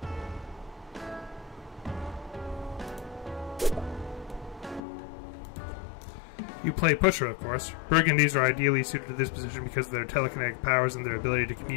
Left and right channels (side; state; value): right; drops out; at 4.8 s